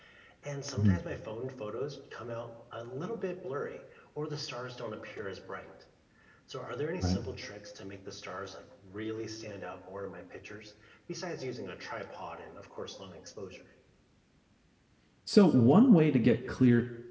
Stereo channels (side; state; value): both; identical; correlation 1.00